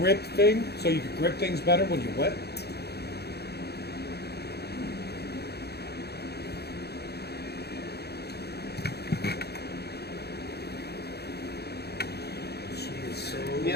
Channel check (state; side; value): late; right; 0.47 ms